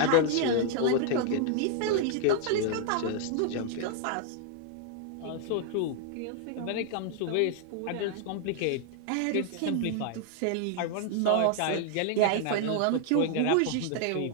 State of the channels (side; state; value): both; different; correlation 0.00